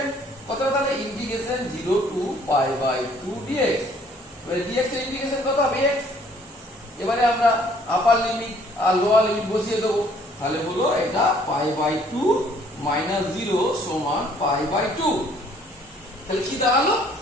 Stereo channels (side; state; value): both; normal; correlation 0.60